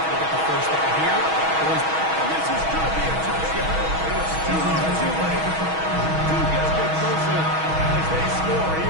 to get the first down here? Or is... And this is going to be a touchdown. It's too little too late. Two get a bit closer as they score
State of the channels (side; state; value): left; late; 6.2 ms